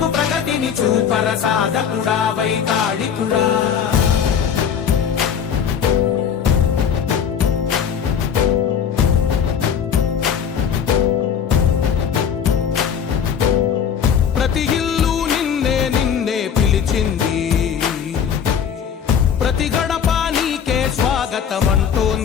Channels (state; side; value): quieter; right; 7.8 dB